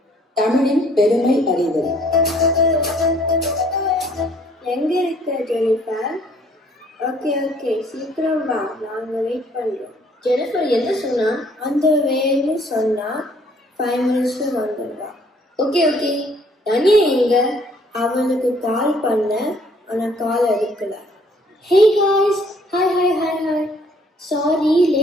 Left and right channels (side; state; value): both; normal; correlation 0.61